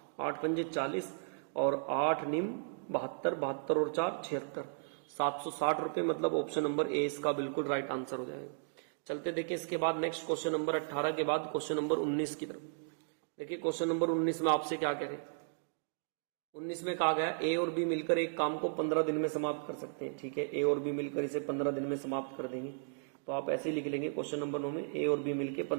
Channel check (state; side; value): silent; left; digital silence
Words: 8 पंजे 40 और 8 निम 72, 72 और 4 76, 760 रुपए, मतलब ऑप्शन नंबर ए इसका बिल्कुल राइट आंसर हो जाएगा। चलते देखें इसके बाद नेक्स्ट क्वेश्चन नंबर 18 के बाद क्वेश्चन नंबर 19 की तरफ। देखिए क्वेश्चन नंबर 19 में आपसे क्या कह रहे हैं, 19 में कहा गया ए और बी मिलकर एक काम को 15 दिन में समाप्त कर सकते हैं। ठीक है, ए और बी मिलकर इसे 15 दिन में समाप्त कर देंगे, तो आप ऐसे ही लिख लेंगे क्वेश्चन नंबर 9 में ए और बी मिलकर